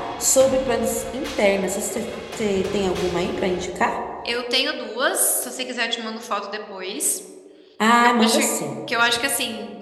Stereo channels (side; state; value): both; identical; correlation 1.00